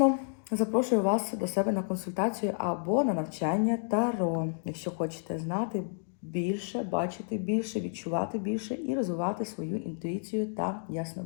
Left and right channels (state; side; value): silent; right; digital silence